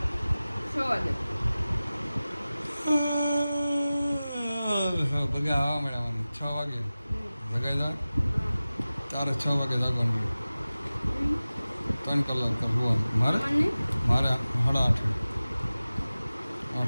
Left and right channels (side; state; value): both; inverted; correlation -0.97